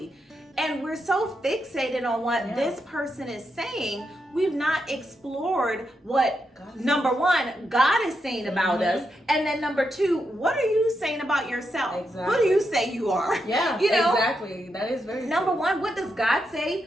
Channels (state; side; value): normal; both; correlation 0.83